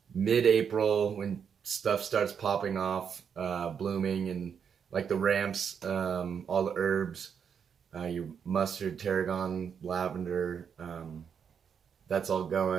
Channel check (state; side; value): quieter; left; 7.2 dB